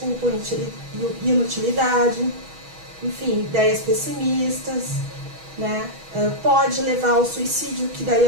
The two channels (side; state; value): left; late; 6.2 ms